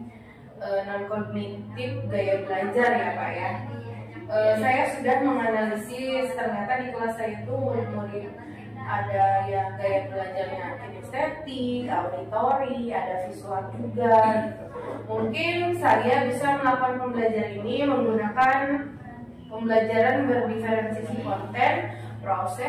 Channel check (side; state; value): both; identical; correlation 1.00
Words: non-kognitif gaya belajar ya Pak ya. Saya sudah menganalisis ternyata di kelas saya itu murid-murid ada yang gaya belajarnya kinestetik, auditori, ada visual juga gitu. Mungkin saya bisa melakukan pembelajaran ini menggunakan pembelajaran berdiferensiasi konten,